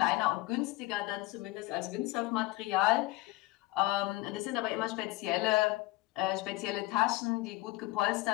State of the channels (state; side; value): quieter; right; 19.2 dB